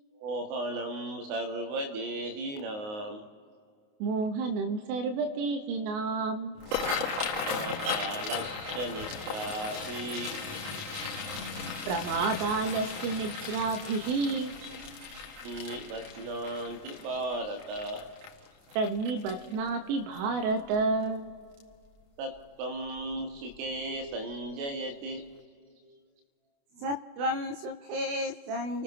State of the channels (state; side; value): late; left; 28 ms